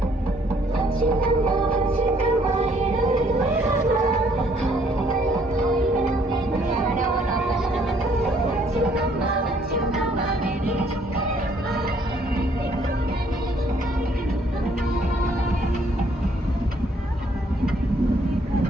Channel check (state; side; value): normal; both; correlation 0.64